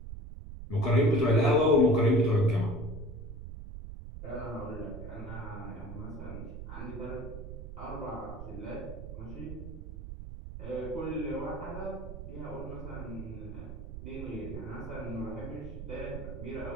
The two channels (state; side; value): noise; right; rumble, 9 dB below the sound